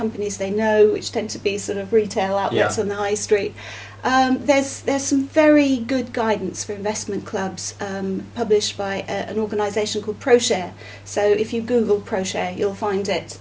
they know, which tend to be sort of retail outlets on the high street. There's some very good guidance for investment clubs published by an organisation called ProShare. So if you Google ProShare, you'll find it,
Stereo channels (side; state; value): both; identical; correlation 1.00